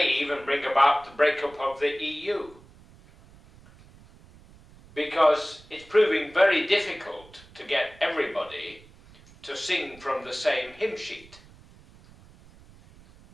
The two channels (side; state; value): right; noise; rumble, 24 dB below the sound